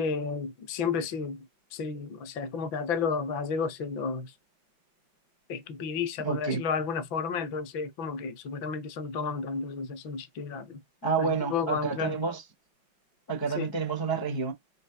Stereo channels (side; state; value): right; late; 5.9 ms